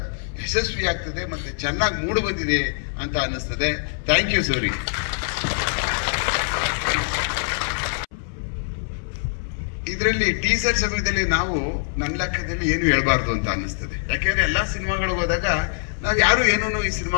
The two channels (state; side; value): silent; right; 63 dB below the other